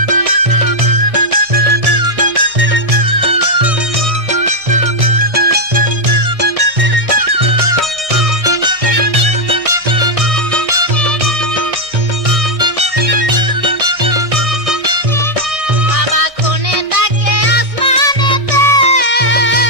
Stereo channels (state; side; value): late; left; 1.6 ms